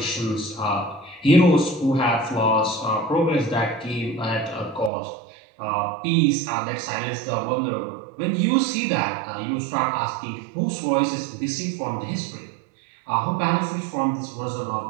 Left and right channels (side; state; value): left; drops out; at 4.9 s